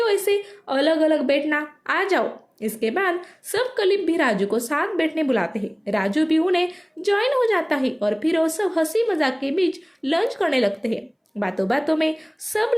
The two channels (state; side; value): identical; both; correlation 1.00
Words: ऐसे अलग अलग बैठना, आ जाओ। इसके बाद सब कलीग भी राजू को साथ बैठने बुलाते हैं। राजू भी उन्हें ज्वाइन हो जाता है और फिर वो सब हंसी मजाक के बीच लंच करने लगते हैं। बातों बातों में सब